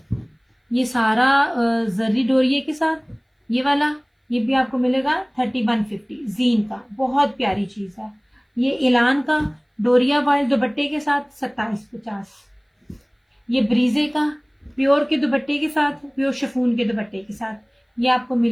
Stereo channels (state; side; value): identical; both; correlation 1.00